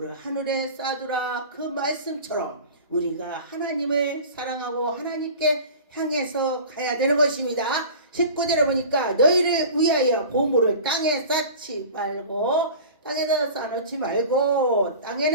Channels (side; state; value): both; inverted; correlation -0.38